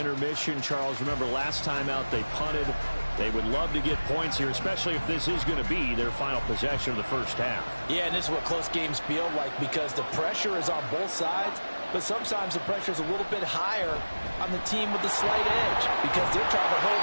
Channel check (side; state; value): both; inverted; correlation -1.00